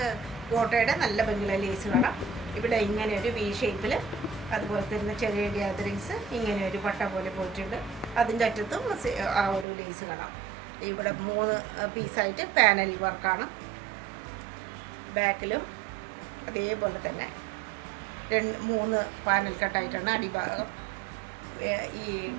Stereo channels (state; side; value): drops out; left; at 9.7 s